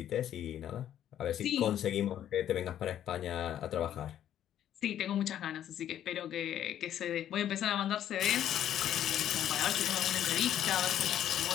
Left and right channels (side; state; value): right; quieter; 10.9 dB